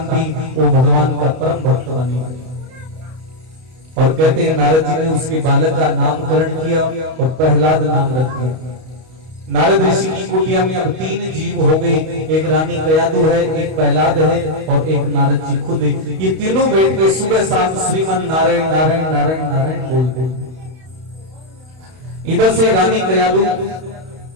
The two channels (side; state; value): left; late; 31 ms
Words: थी वो भगवान का परम भक्त बनी। और कहते हैं नारद जी ने उसके बालक का नामकरण किया और प्रहलाद नाम रख दिया। नारद ऋषि की कुटिया में अब 3 जीव हो गए, एक रानी कयादु है, एक प्रहलाद है और एक नारद जी खुद है। ये तीनों बैठ के सुबह शाम श्रीमन नारायण नारायण नारायण नारायण बोलते। इधर से रानी कयादु